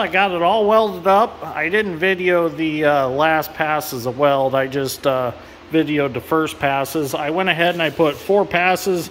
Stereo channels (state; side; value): identical; both; correlation 1.00